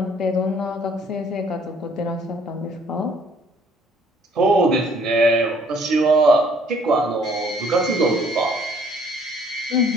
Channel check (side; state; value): both; normal; correlation 0.60